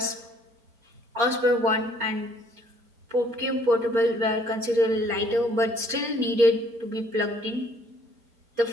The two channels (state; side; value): late; left; 4.3 ms